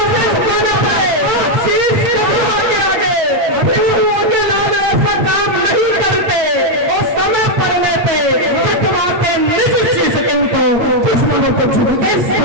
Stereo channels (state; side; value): late; left; 8.6 ms